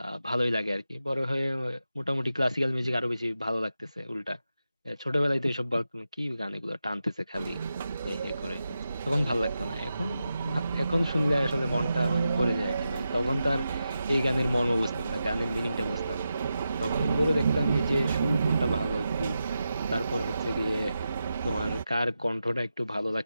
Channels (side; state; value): both; inverted; correlation -0.89